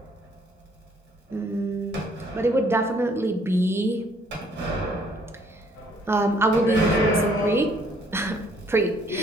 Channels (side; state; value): both; normal; correlation 0.64